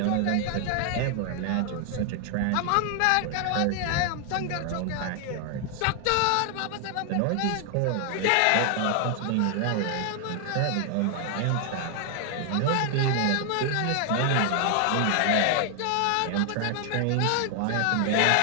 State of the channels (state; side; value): different; both; correlation 0.00